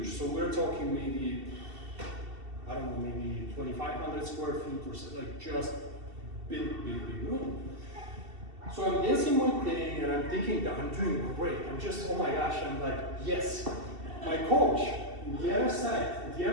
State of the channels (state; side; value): late; left; 2.7 ms